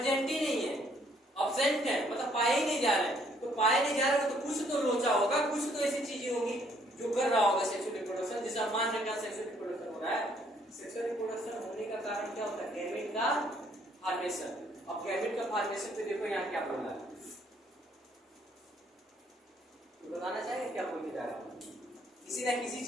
ही नहीं है, अब्सेंट है, मतलब पाए ही नहीं जा रहे हैं। तो पाए नहीं जा रहे तो कुछ तो लोचा होगा, कुछ तो ऐसी चीजें होगी जो कर रहा होगा सेक्सुअल रिप्रोडक्शन, जिसे मान रहे हैं सेक्सुअल रिप्रोडक्शन हो रहा है। सेक्सुअल रिप्रोडक्शन होने का कारण क्या होता है, गैमेट का फॉर्मेशन। अब गैमेट का फॉर्मेशन पे देखो यहाँ क्या बोल रहा है, तो बताना चाहिए क्या बोल के जा रहा है, किसी ना किसी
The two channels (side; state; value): both; normal; correlation 0.65